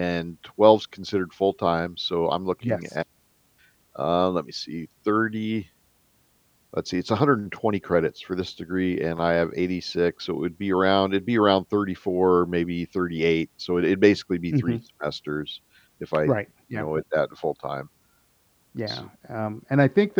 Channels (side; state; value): both; identical; correlation 1.00